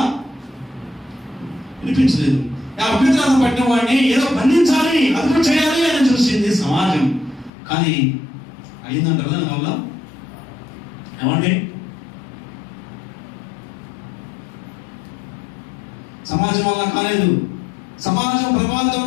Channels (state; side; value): drops out; right; at 7.5 s